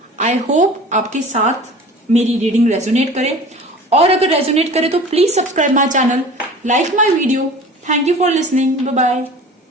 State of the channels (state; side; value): normal; both; correlation 0.41